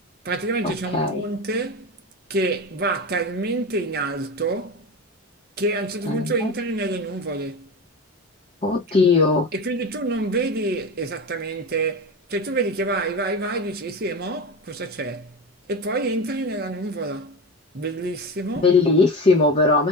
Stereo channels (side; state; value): both; normal; correlation 0.24